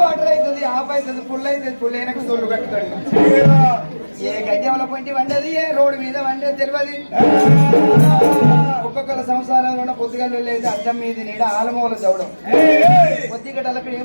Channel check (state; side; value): inverted; both; correlation -1.00